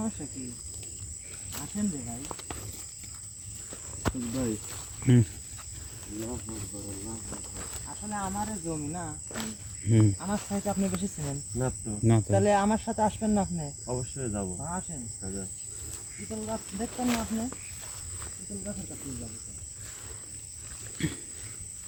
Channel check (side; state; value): both; identical; correlation 1.00